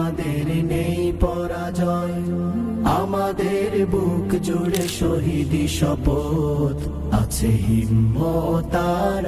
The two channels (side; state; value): both; identical; correlation 1.00